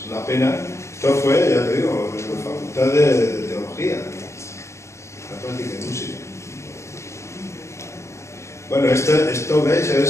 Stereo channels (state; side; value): late; right; 0.14 ms